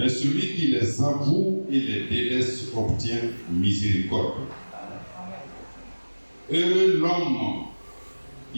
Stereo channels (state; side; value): inverted; both; correlation -1.00